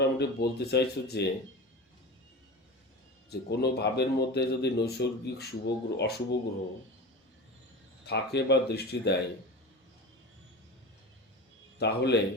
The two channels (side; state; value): both; normal; correlation 0.30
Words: বলতে চাইছো যে যে কোনো ভাবের মধ্যে যদি নৈসর্গিক শুভ গ্রহ অশুভ গ্রহ থাকে বা দৃষ্টি দেয়, তাহলে